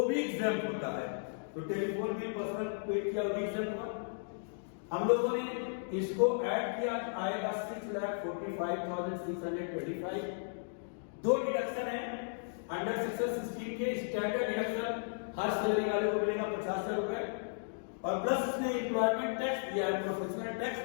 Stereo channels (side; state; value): right; silent; digital silence